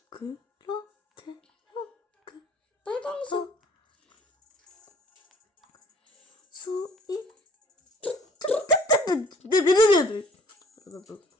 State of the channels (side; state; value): both; normal; correlation 0.56